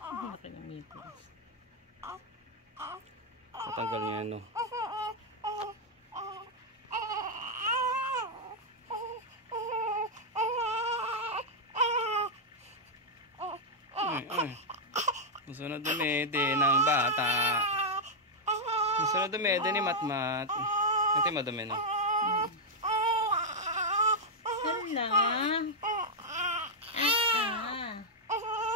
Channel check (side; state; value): both; normal; correlation -0.03